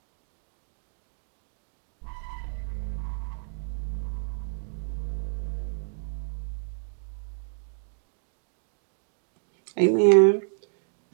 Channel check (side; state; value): left; silent; digital silence